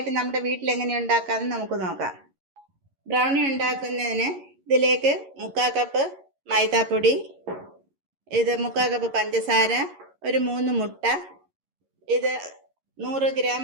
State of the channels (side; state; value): left; late; 11 ms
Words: നമ്മുടെ വീട്ടിൽ എങ്ങനെ ഉണ്ടാക്കാമെന്ന് നമുക്ക് നോക്കാം. ബ്രൗണി ഉണ്ടാക്കുന്നതിന് ഇതിലേക്ക് 3/4 കപ്പ് മൈദാപ്പൊടി, ഇത് 3/4 കപ്പ് പഞ്ചസാര, ഒരു 3 മുട്ട, ഇത് 100 ഗ്രാം